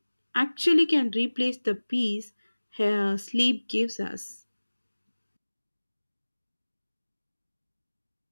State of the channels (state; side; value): inverted; both; correlation -1.00